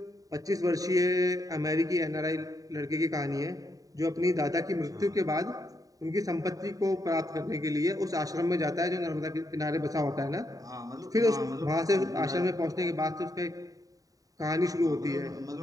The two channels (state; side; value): late; left; 0.17 ms